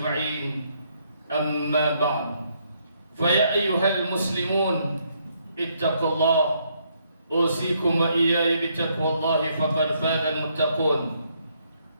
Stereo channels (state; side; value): inverted; both; correlation -0.72